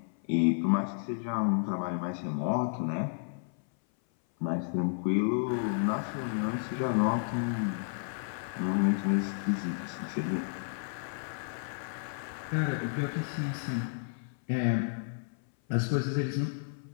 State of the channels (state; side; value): silent; right; 57 dB below the other